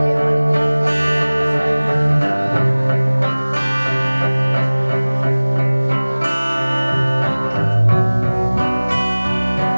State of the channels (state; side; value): inverted; both; correlation -1.00